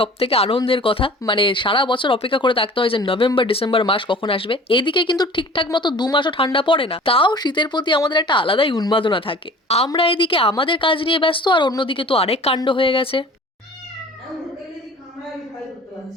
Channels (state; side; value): normal; both; correlation 0.45